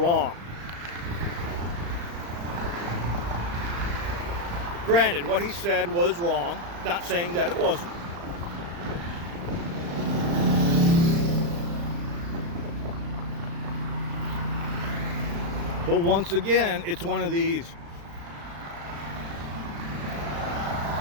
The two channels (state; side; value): late; left; 35 ms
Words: Granted, what he said was wrong. Not saying that it wasn't. But once again, it's one of these.